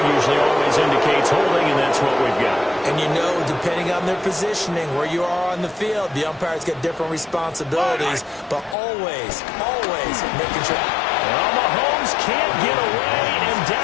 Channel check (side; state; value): right; drops out; at 8.8 s